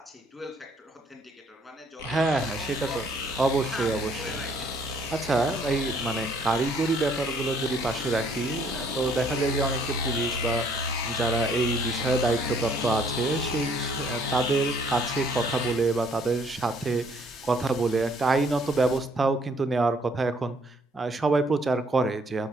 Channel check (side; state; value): both; normal; correlation 0.63